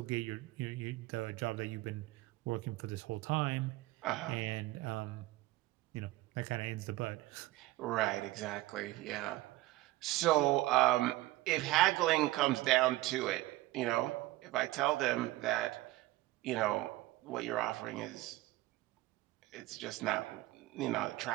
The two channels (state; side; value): quieter; left; 18.1 dB